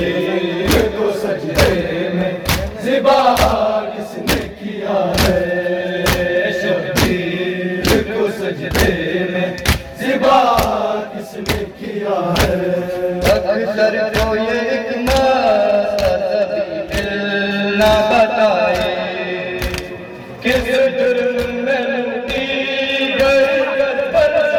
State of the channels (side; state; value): both; identical; correlation 1.00